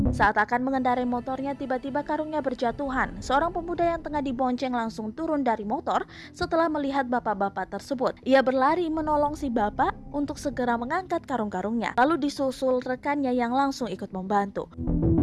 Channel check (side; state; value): both; identical; correlation 1.00